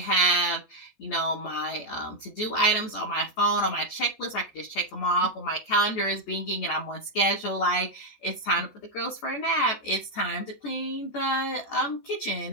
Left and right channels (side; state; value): right; late; 14 ms